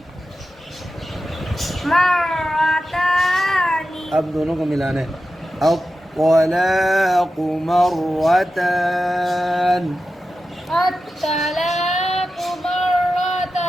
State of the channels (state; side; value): normal; both; correlation 0.92